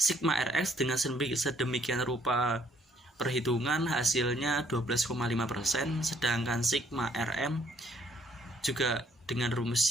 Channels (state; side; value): normal; both; correlation 0.65